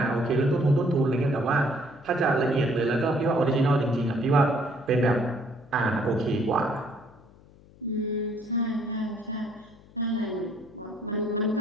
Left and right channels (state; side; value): noise; left; hum, 25 dB below the sound